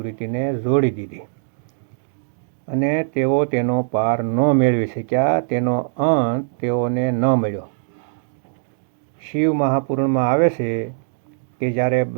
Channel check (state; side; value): silent; left; digital silence